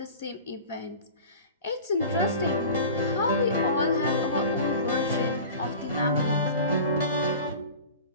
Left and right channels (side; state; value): both; inverted; correlation -0.38